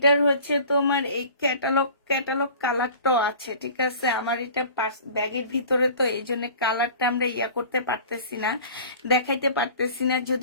হচ্ছে তোমার এই ক্যাটালগ কালারটাও আছে, ঠিক আছে। আমার এটা ব্যাগের ভিতরে, তো এই জন্য কালারটা আমরা করতে পারতেছি না, দেখাইতে পারতেছি না।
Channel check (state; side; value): inverted; both; correlation -0.44